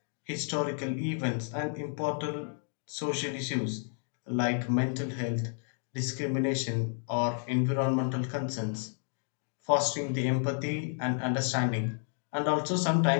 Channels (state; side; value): silent; right; 57 dB below the other